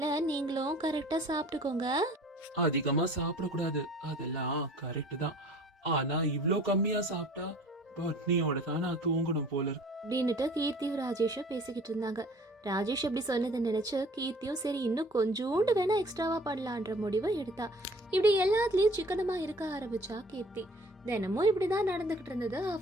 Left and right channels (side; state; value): both; normal; correlation 0.49